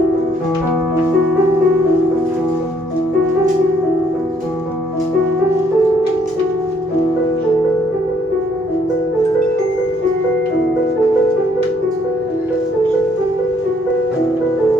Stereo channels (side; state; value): both; normal; correlation 0.67